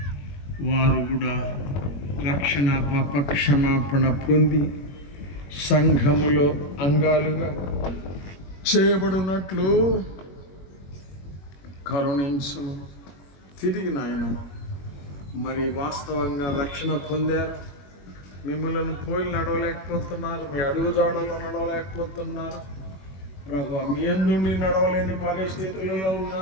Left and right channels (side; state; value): right; late; 21 ms